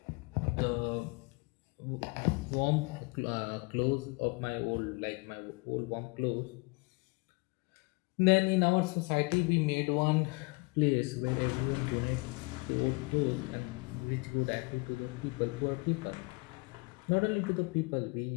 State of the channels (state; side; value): quieter; right; 28.1 dB